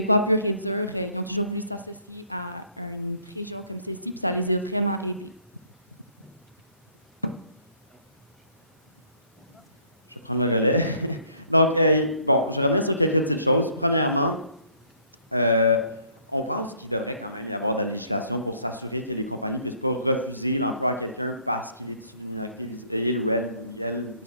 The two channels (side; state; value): both; inverted; correlation -0.62